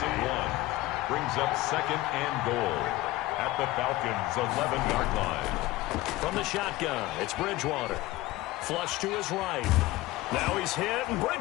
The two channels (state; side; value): quieter; right; 17.7 dB